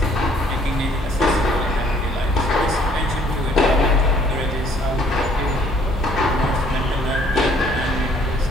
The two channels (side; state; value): both; normal; correlation 0.61